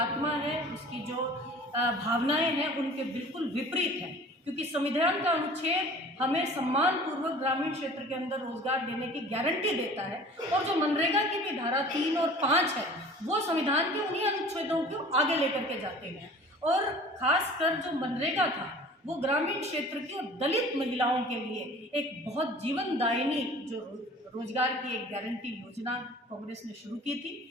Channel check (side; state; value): both; normal; correlation 0.45